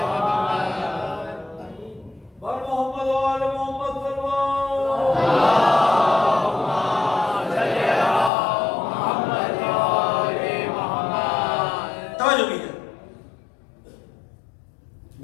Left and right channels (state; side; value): drops out; right; at 8.3 s